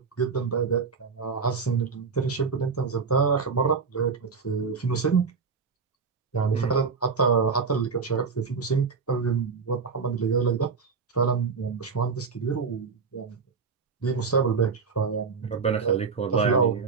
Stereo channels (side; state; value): left; quieter; 5.3 dB